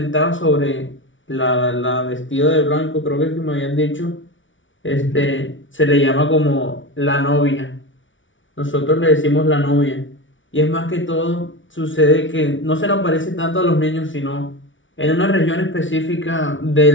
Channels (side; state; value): right; late; 0.56 ms